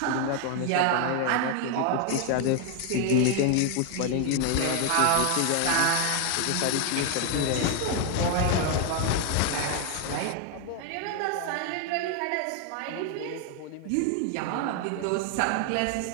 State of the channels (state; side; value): different; both; correlation 0.00